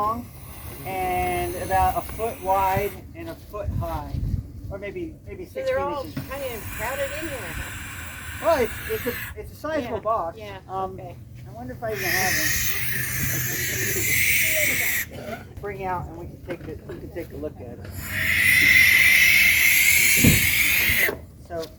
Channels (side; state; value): both; identical; correlation 1.00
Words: and about a foot wide and a foot high, or maybe 16 So they're all inches. kind of crowded in there, huh? Well, it's a sizable box. Yeah, okay. I wonder if I even have them. Bring out and we can take a look at it. So.